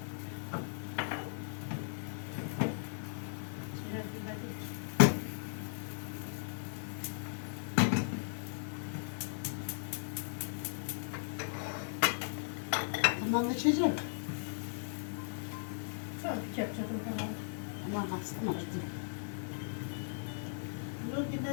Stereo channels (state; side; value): silent; right; 53 dB below the other